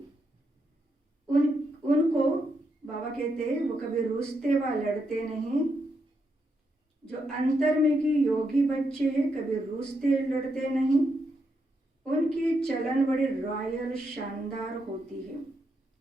उनको बाबा कहते वो कभी रूसते व लड़ते नहीं। जो अंतर्मुखी योगी बच्चे हैं कभी रूसते लड़ते नहीं। उनकी चलन बड़ी रॉयल शानदार होती है।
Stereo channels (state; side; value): normal; both; correlation 0.81